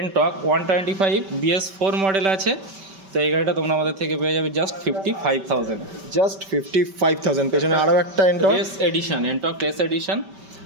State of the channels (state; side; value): late; left; 5.2 ms